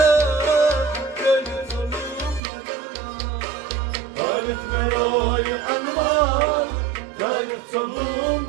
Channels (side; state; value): left; drops out; at 2.4 s